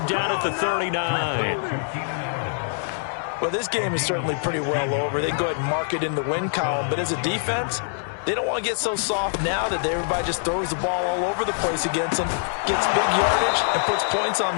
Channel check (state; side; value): silent; right; digital silence